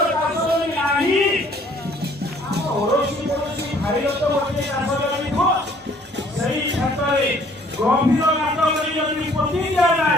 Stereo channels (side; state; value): both; normal; correlation 0.58